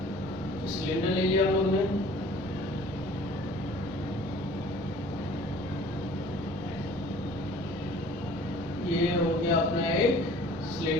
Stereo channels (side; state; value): both; normal; correlation 0.50